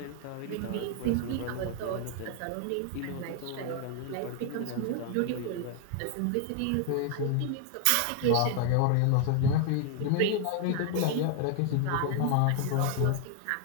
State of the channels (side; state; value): both; different; correlation 0.00